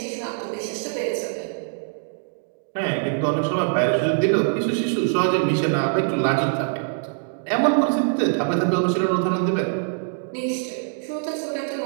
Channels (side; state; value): left; silent; digital silence